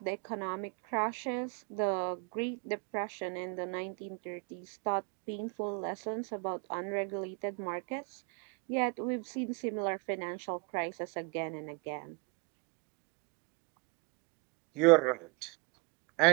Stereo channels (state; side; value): quieter; left; 28.9 dB